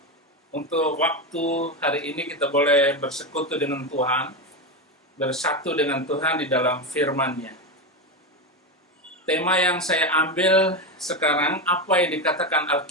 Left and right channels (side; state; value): both; normal; correlation 0.14